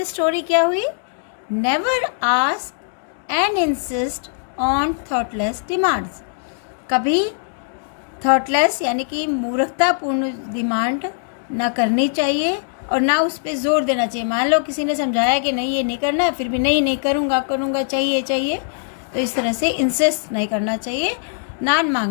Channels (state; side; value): silent; right; digital silence